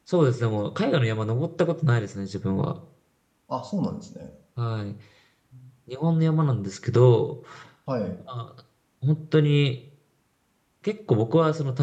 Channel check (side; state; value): both; identical; correlation 1.00